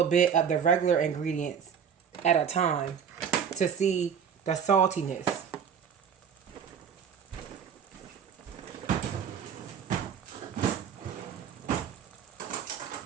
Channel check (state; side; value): quieter; left; 7.5 dB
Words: bit of the regular ingredients at a time to see the saltiness.